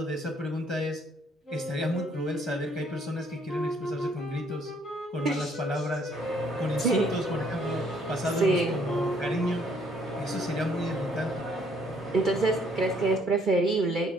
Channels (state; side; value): normal; both; correlation 0.65